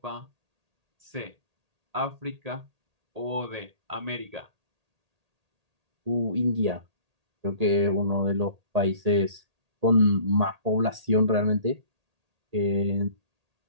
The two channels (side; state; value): left; late; 1.8 ms